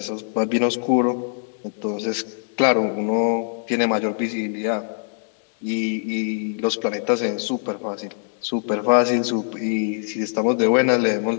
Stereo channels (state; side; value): silent; right; digital silence